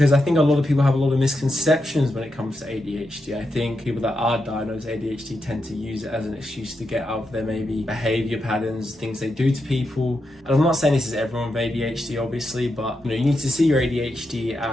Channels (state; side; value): normal; both; correlation 0.85